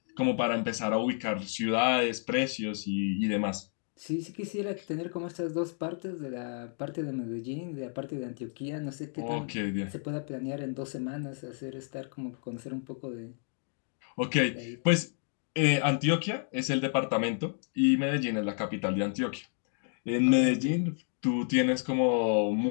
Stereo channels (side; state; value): right; silent; 57 dB below the other